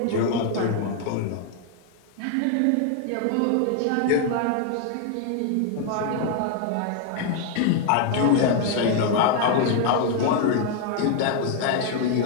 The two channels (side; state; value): both; different; correlation 0.00